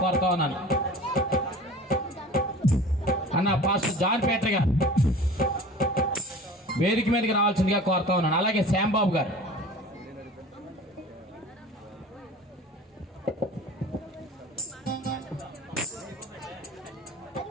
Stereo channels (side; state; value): both; normal; correlation 0.40